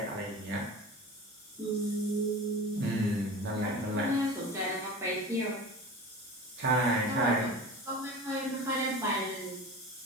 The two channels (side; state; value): both; normal; correlation 0.34